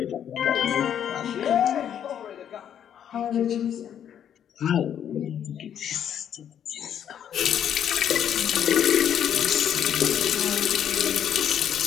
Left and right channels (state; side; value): quieter; right; 9.4 dB